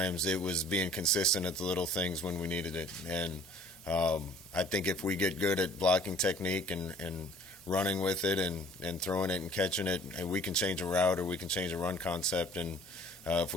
It was being consistent at the little things when we needed it. And I think if we get good at blocking technique and running with it and throwing it and catching it, and we can change a route or we can change a run concept. And if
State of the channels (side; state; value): both; normal; correlation 0.52